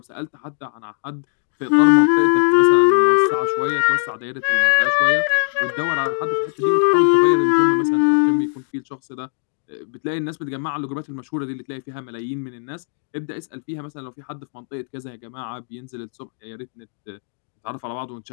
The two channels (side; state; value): right; silent; digital silence